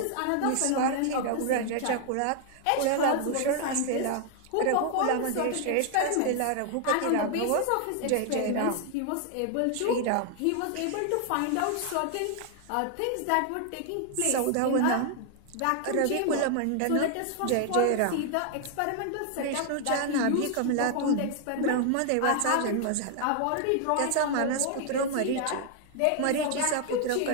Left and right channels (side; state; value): both; different; correlation 0.00